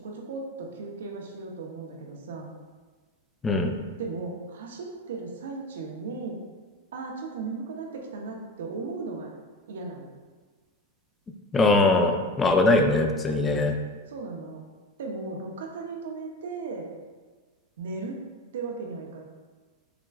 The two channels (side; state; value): both; normal; correlation 0.33